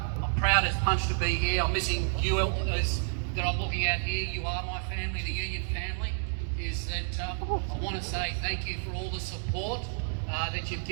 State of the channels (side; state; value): left; silent; digital silence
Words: I'm proud as punch to be here. I'm missing you as that I'm looking at here. You are my family, the union family. Is that I want to say thank you for all the support that you've